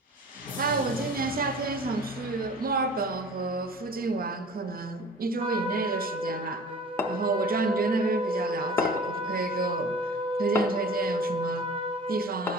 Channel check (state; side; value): normal; both; correlation 0.43